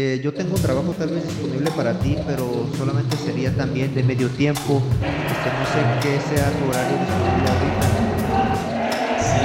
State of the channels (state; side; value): identical; both; correlation 1.00